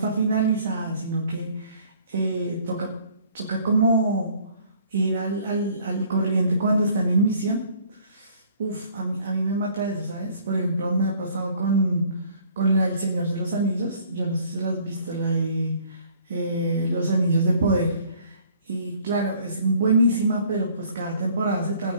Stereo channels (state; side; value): inverted; both; correlation -0.57